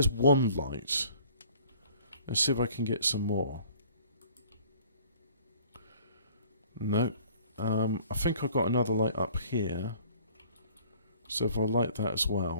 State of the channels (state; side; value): inverted; both; correlation -0.53